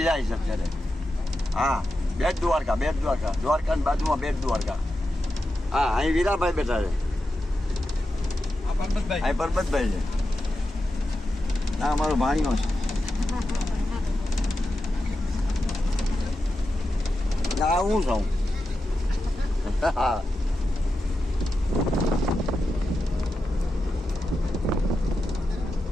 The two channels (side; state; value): both; normal; correlation 0.90